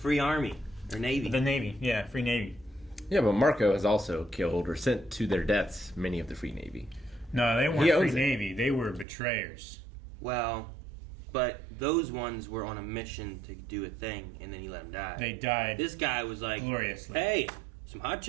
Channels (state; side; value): drops out; left; at 9.1 s